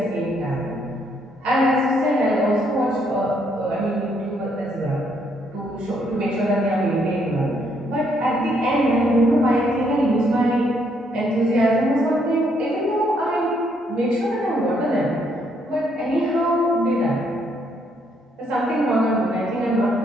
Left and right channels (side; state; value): both; normal; correlation 0.72